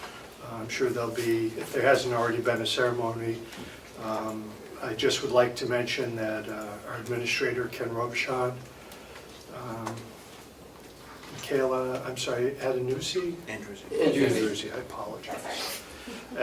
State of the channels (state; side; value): identical; both; correlation 1.00